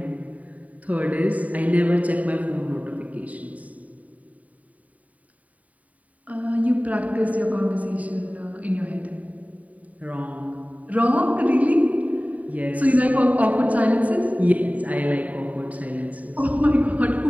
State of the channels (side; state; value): left; late; 0.070 ms